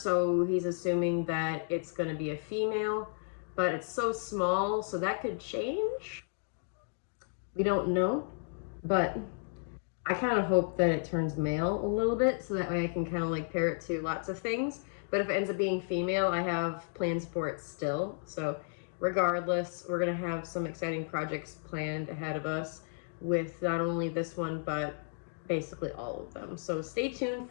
so he's assuming that it's going to be a female, but it's so small, so that could change. We don't know, but I kind of hope that it turns male a little bit, so that way I can kind of like pair it to lots of things. But if it ends up being female, I have plans for it still. So regardless, we're going to have some exciting projects planned ahead of us with not only this one, but basically all of them. So stay tuned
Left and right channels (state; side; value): silent; right; digital silence